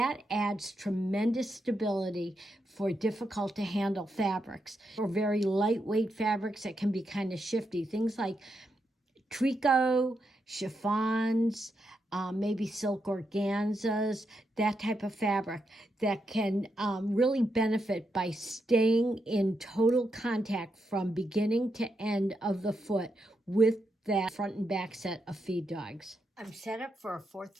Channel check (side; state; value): both; normal; correlation 0.83